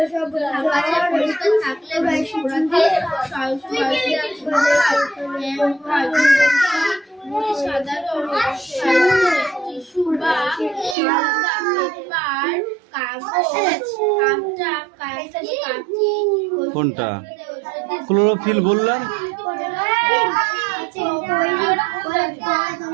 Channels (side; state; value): left; drops out; at 11.0 s